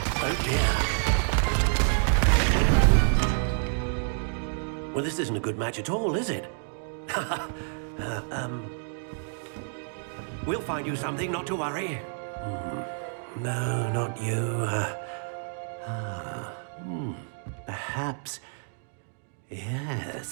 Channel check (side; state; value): left; silent; digital silence